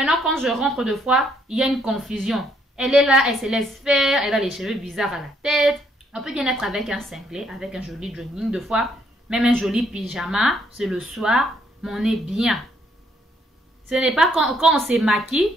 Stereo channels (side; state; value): both; normal; correlation 0.70